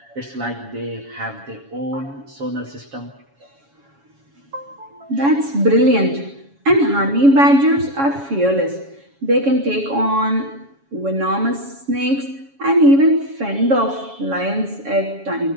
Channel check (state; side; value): late; left; 7.2 ms